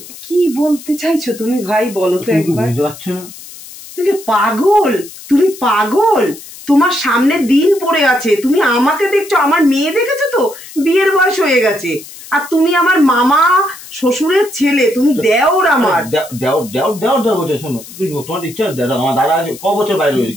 কি বলতে চাইছো তুমি ভাই, বলো তো একবার। বুঝতে পারছো না? তুমি পাগল, তুমি পাগল। তোমার সামনে দিন পড়ে আছে, তুমি আমাকে দেখছো, আমার মেয়ে দেখেছো তো? বিয়ের বয়স হয়ে গেছে, আর তুমি আমার মামা শ্বশুরের ছেলে, তুমি দেওর আমার। দেওর বলছে। শোনো, তোমার ইচ্ছা আমার দাদা ক বছর বাইরে রয়েছে,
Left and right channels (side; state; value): left; noise; hiss, 16 dB below the sound